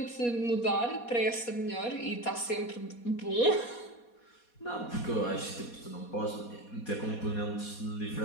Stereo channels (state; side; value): late; right; 4.2 ms